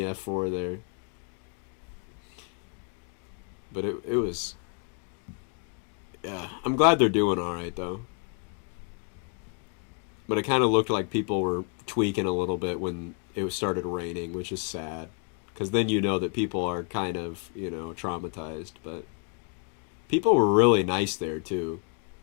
there. But it was. Yeah, I'm glad they're doing alright, though. But it kind of looked like people were tweaking a little bit when it started raining, which is sad. Because then you know that people are kind of, you know, traumatized. But people were really nice there, too.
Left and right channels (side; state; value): right; quieter; 38.6 dB